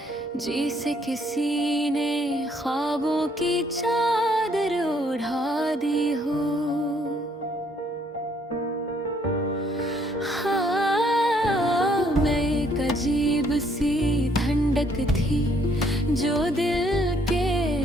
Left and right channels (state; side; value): normal; both; correlation 0.66